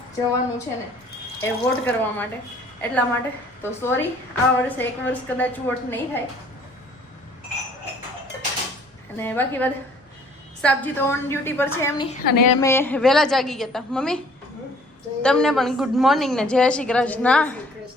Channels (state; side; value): normal; both; correlation 0.56